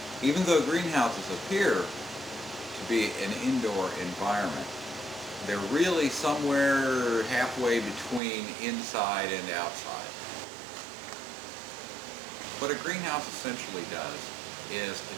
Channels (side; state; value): left; drops out; at 8.2 s